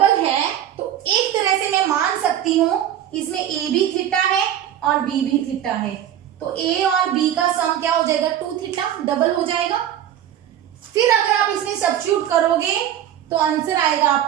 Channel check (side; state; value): left; quieter; 10.9 dB